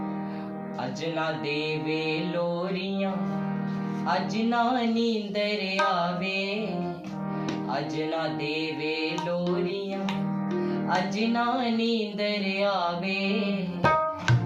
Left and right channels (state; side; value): identical; both; correlation 1.00